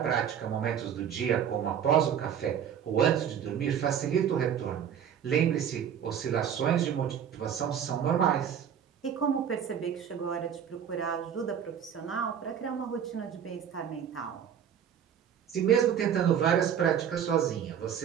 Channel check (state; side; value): quieter; left; 8.7 dB